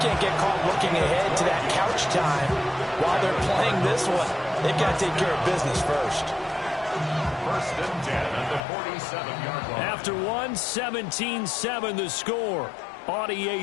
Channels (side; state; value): right; drops out; at 8.6 s